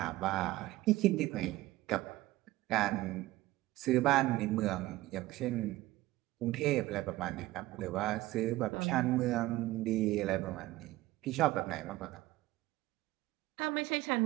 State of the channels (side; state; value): left; quieter; 17.5 dB